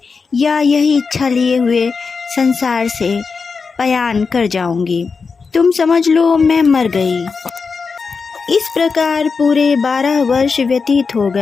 या यही इच्छा लिए हुए संसार से पयान कर जाऊंगी। तुम समझ लो मैं मर गई। इस प्रकार पूरे 12 वर्ष व्यतीत हो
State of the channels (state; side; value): quieter; right; 5.0 dB